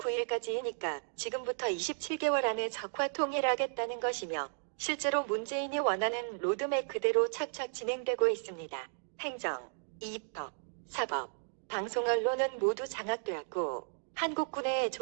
지금부터 27개월 안에 적화 통일하겠다는 것이며 실제로 문재인이 원하는 로드맵 그대로 착착 진행되고 있습니다. 행정, 입법, 사법, 방송 언론은 모두 장악되었고 한국군의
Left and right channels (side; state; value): left; silent; digital silence